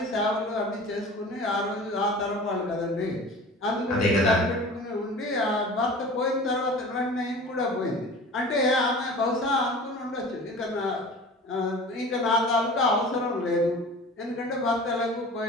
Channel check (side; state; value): both; normal; correlation 0.40